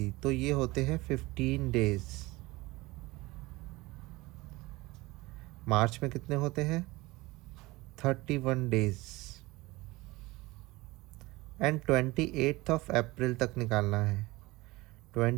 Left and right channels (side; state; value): left; quieter; 21.1 dB